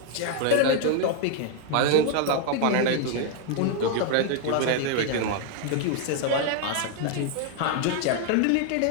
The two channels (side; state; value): both; different; correlation 0.00